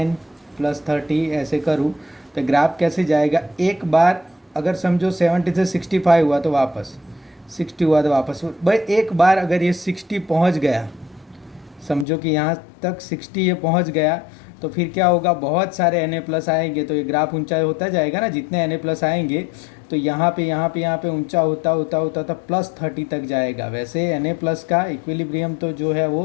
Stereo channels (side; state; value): right; drops out; at 12.1 s